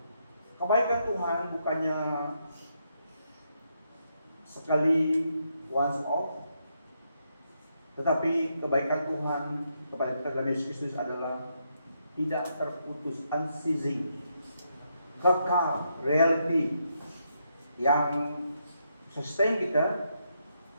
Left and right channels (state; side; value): inverted; both; correlation -0.79